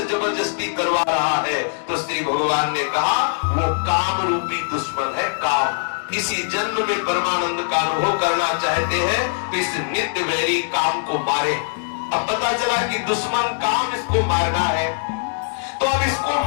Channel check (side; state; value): right; silent; digital silence